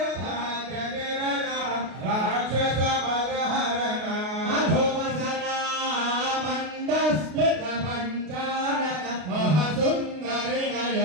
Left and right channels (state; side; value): late; left; 33 ms